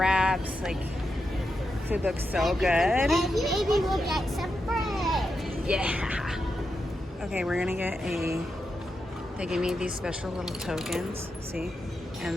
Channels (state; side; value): normal; both; correlation 0.86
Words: Like, food looks so good. And maybe we'll get some bread. Yeah. Okay, we're gonna get they gave me these special little tokens, see?